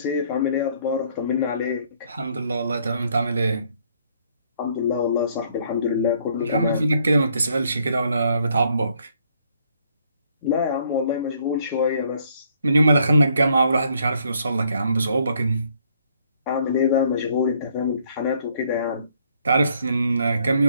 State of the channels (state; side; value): inverted; both; correlation -0.66